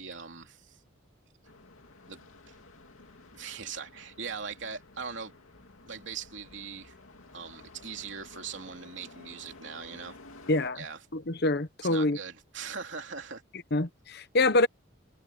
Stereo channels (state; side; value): normal; both; correlation -0.01